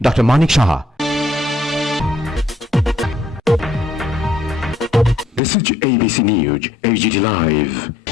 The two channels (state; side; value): drops out; right; at 5.4 s